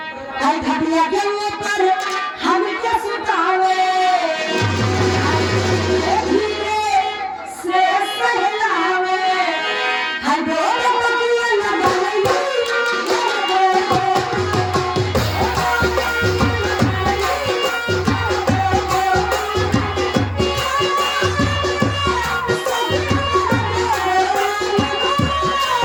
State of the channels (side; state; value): both; identical; correlation 1.00